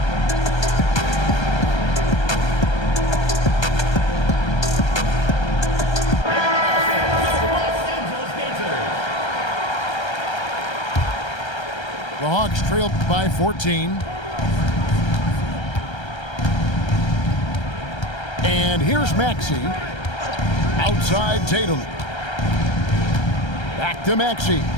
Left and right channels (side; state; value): right; late; 1.3 ms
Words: The Hawks trailed by 14. And here's Maxey. Outside Tatum. Back to Maxey.